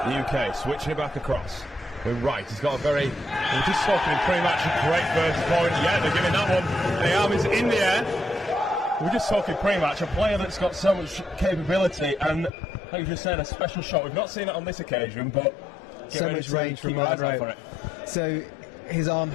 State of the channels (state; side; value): drops out; right; at 12.5 s